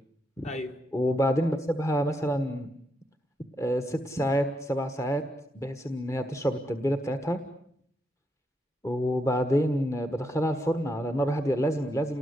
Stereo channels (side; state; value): both; normal; correlation 0.80